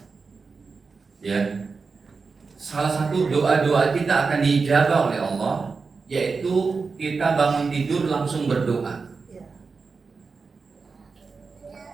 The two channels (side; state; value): left; quieter; 4.6 dB